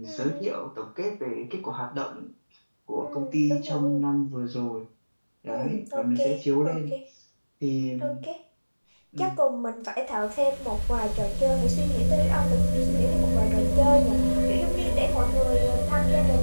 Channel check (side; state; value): both; inverted; correlation -1.00